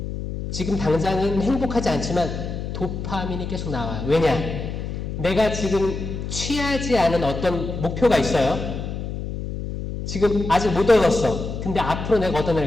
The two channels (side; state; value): left; noise; hum, 6 dB below the sound